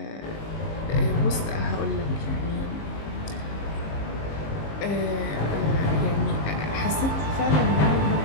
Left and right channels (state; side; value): late; right; 19 ms